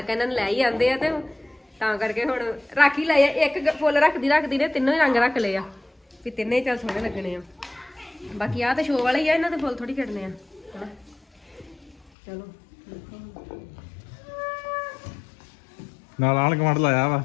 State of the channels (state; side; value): drops out; right; at 12.1 s